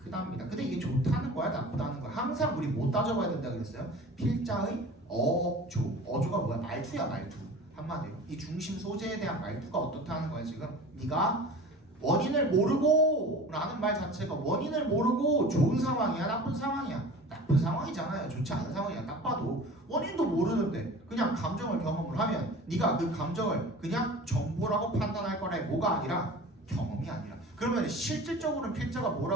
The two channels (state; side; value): normal; both; correlation 0.39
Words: 크답니다. 근데 이게 좋다는 거야, 나쁘다는 거야? 항상 우리 못 따져봐야 된다 그랬어요. 필자의 어조가 뭐야? 말투야, 말투. 한마디로 이 중심 소재에 대한 말투가 어떻다는 거야 지금. 네가 원인을 모르고 라는 말 자체가 원인을 모르고 좋은 상황이야, 나쁜 상황이야? 나쁜 상황이잖아요. 좋지 않은 상황이야. 딱 봐도 원인도 모르는데 그냥 감정을 경험을 하면 네가 그 감정을 그냥 정보라고 판단할 거라. 뭐가 아니라 경험이 아니라. 그러면 실질적으로는 필자가